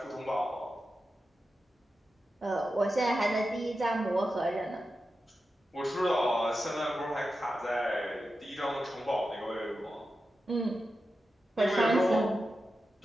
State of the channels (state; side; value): normal; both; correlation 0.91